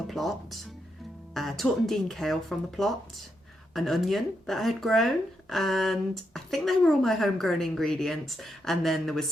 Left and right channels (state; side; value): normal; both; correlation 0.82